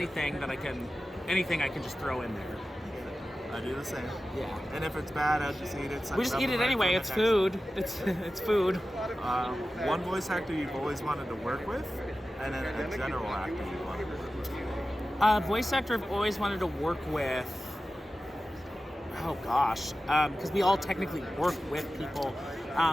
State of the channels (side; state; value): both; normal; correlation 0.94